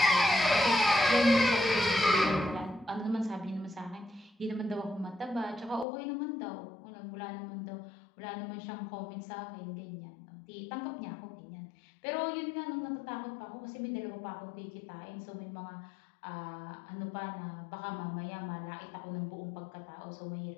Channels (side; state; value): right; drops out; at 5.9 s